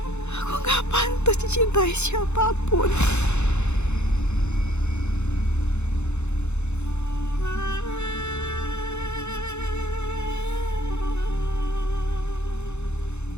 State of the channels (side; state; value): right; late; 0.82 ms